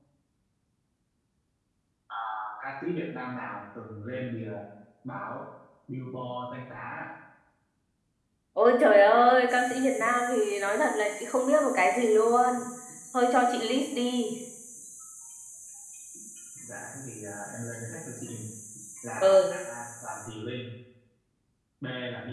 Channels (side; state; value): both; identical; correlation 1.00